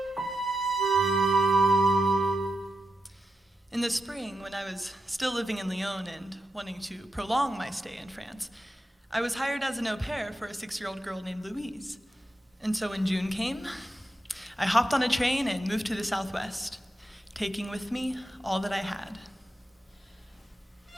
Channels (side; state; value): both; normal; correlation 0.87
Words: In the spring, when I was still living in Lyon and wanting to prolong my stay in France, I was hired as an au pair for a 6-year-old girl named Louise. And so when June came, I hopped on a train and moved to the Southwest, taking with me all that I had.